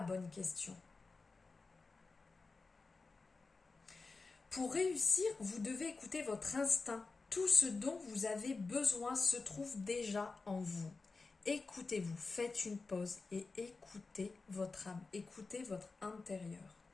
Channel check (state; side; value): quieter; right; 4.0 dB